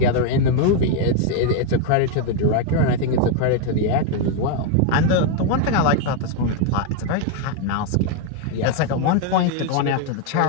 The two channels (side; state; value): both; different; correlation 0.01